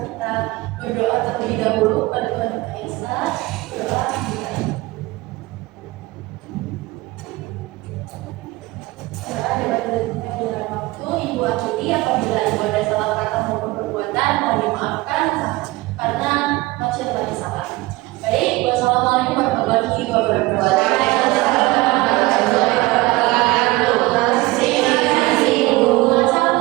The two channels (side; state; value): left; quieter; 20.7 dB